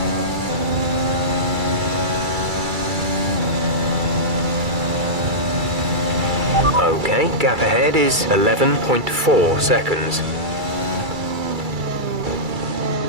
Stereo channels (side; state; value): left; late; 2.3 ms